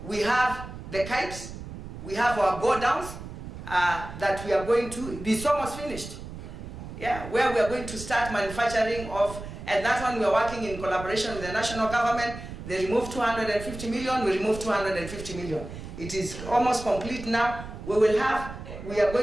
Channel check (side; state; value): right; noise; rumble, 11 dB below the sound